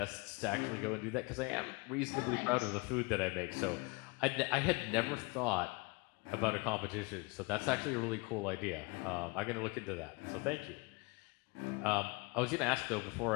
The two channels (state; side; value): quieter; right; 27.6 dB